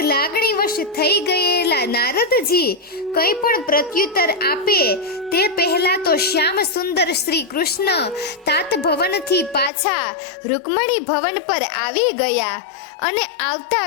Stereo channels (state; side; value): drops out; right; at 9.7 s